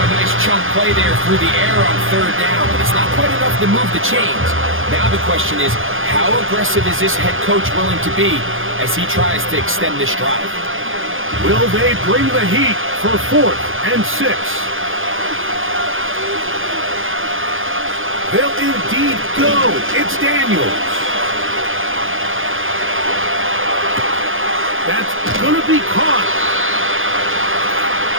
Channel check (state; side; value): late; left; 0.59 ms